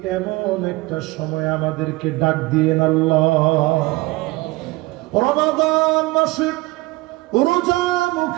এমন একটা সময় আমাদেরকে ডাক দিয়েন আল্লাহ। রমাদান মাসে রোজা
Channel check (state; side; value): quieter; left; 21.7 dB